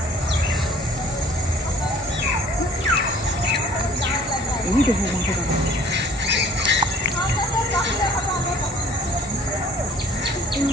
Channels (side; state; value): both; normal; correlation 0.52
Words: এই দেখো মাংস দাঁড়াও।